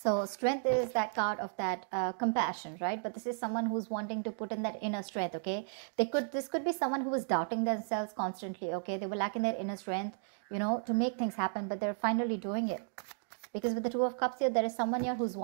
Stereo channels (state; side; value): silent; left; digital silence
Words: So Strength is that card of that compassion, right? But this is someone who's wanting to put in that inner strength, okay? This could be someone who is doubting themselves constantly, okay? They were lacking their inner strength, you know, to make things happen, but they're finally doing it. Because with the Two of Cups here, there is someone here who's